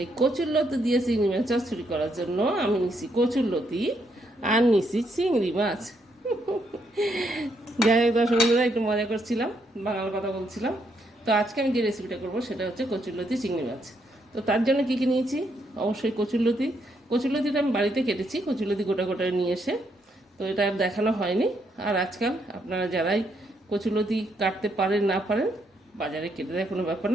এই কচুরলতি দিয়ে চিংড়ি মাছ চচ্চড়ি করার জন্য আমি নিছি কচুরলতি আর নিছি চিংড়ি মাছ। যাই হোক দর্শক বন্ধুরা, একটু মজা করছিলাম, বাংলা কথা বলছিলাম। তো আজকে আমি যে রেসিপিটা করবো সেটা হচ্ছে কচুরলতি চিংড়ি মাছ। তো তার জন্য কী কী নিয়েছি? অবশ্যই কচুরলতিটা আমি বাড়িতে কেটেছি, কচুরলতি গোটা গোটা নিয়ে এসে। তো এটা আর দেখানো হয়নি। আর আজকাল আপনারা যারাই কচুরলতি কাটতে পারেন না পারেন, বাজারে কেটে দেয়, কোনো ব্যাপার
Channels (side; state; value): both; normal; correlation 0.76